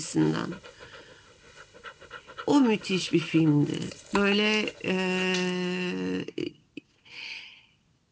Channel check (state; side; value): identical; both; correlation 1.00